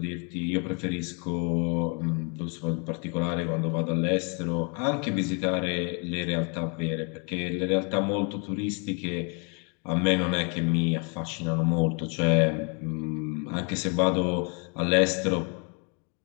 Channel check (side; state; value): right; quieter; 36.4 dB